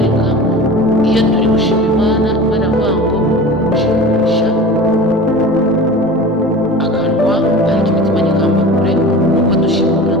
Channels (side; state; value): left; noise; rumble, 26 dB below the sound